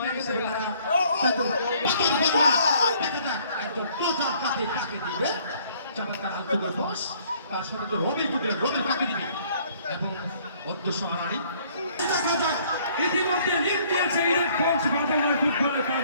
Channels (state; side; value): inverted; both; correlation -0.60